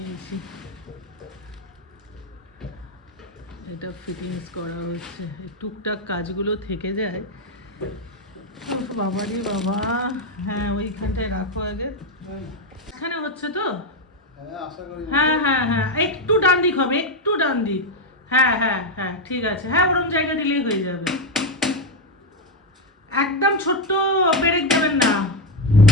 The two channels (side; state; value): both; normal; correlation 0.07